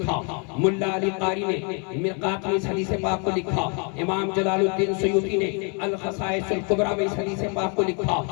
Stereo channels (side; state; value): right; quieter; 36.7 dB